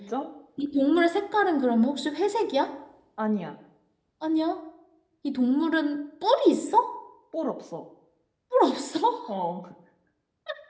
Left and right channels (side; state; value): both; identical; correlation 1.00